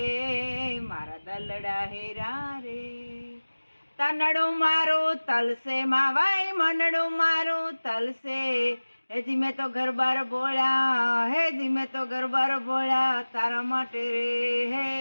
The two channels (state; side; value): inverted; both; correlation -1.00